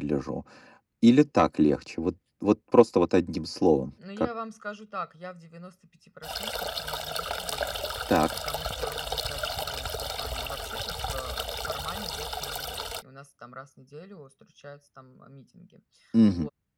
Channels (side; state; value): both; identical; correlation 1.00